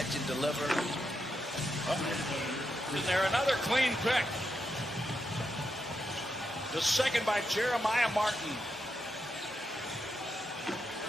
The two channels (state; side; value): normal; both; correlation 0.84